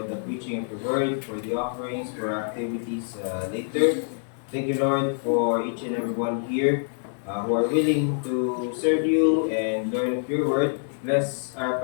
the preaching of your word, for the offerings, for our activities later. Thank you, Lord, for each and every one here who are willing to serve you and learn of your word. Bless our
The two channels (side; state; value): right; silent; digital silence